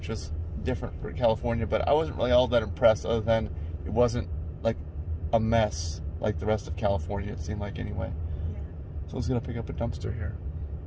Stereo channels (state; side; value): identical; both; correlation 1.00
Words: was different for California, but I wasn't really all that impressed, other than it wasn't like a mess like the rest of California, it seemed like, anyway. Yeah. Someone's gonna pick up a dumpster here.